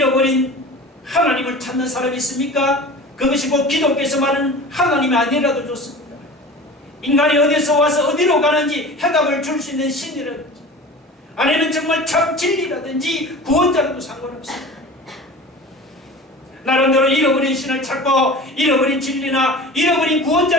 하나님을 찾는 사람이 있습니까? 그것이 곧 기독교에서 말하는 하나님이 아니라도 좋습니다. 인간이 어디서 와서 어디로 가는지 해답을 줄 수 있는 신이라든지 아니면 정말 참 진리라든지 구원자라도 상관없습니다. 나름대로 잃어버린 신을 찾고 잃어버린 진리나 잃어버린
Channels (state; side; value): normal; both; correlation 0.37